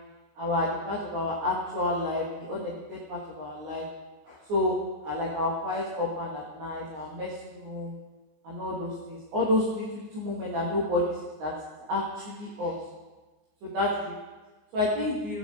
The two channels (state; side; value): late; left; 19 ms